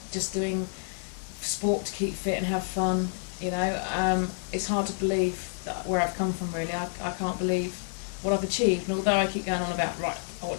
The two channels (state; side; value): silent; right; digital silence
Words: just doing sport to keep fit and have fun, it's hard to believe that where I've come from, really. I can't believe what I've achieved, and although I keep going on about, right, I want